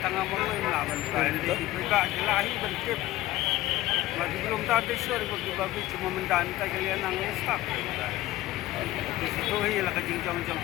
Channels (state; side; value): quieter; right; 16.5 dB